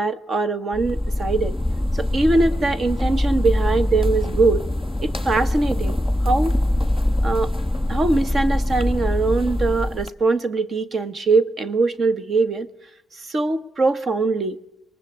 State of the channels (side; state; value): both; normal; correlation 0.86